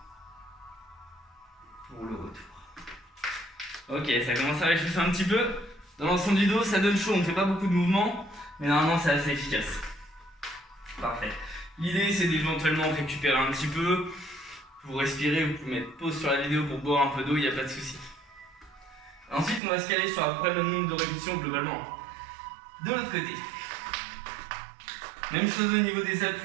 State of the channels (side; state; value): left; drops out; at 19.6 s